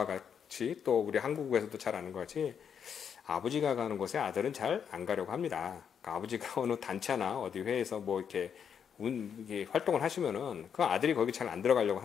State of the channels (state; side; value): quieter; right; 7.6 dB